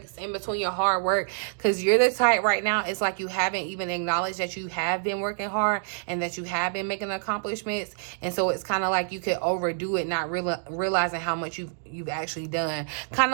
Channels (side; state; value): left; silent; digital silence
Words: in between your hard work, because you're the type right now, it's like you haven't even acknowledged that you have been working hard and that you have been making accomplishments. And so it's kind of like you could overdo it, not realizing how much you've actually done. Kind